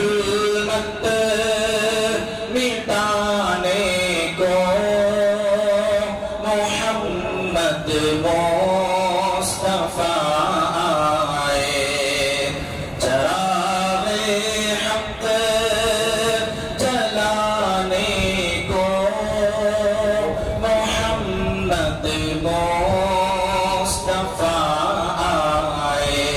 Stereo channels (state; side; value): identical; both; correlation 1.00